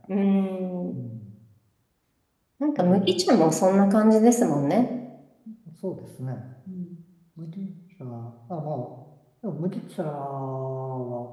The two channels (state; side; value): identical; both; correlation 1.00